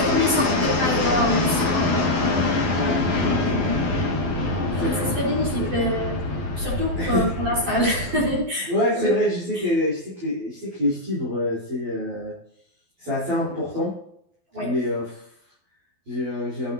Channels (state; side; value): late; left; 12 ms